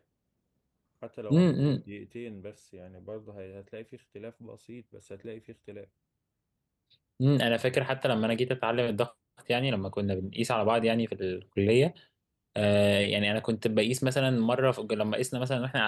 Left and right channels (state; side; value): identical; both; correlation 1.00